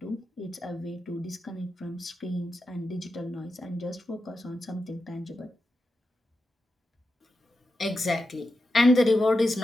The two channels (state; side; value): normal; both; correlation 0.89